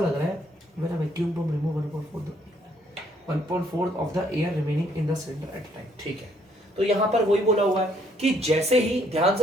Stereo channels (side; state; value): both; normal; correlation 0.67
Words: रहा है। When a vacuum pump remove 1/4 of the air remaining in the cylinder at a time. ठीक है, तो यहां पर वही बोला हुआ है कि जैसे ही, ध्यान